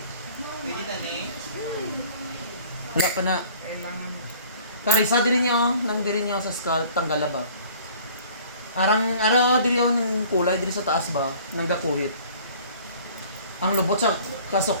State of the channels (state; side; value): inverted; both; correlation -0.51